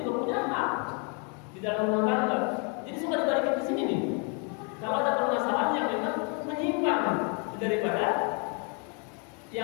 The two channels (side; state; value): right; quieter; 36.3 dB